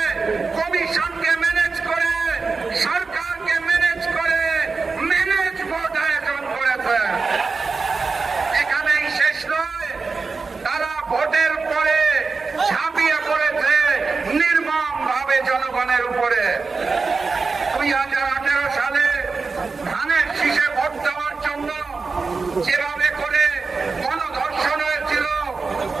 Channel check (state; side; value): quieter; left; 4.4 dB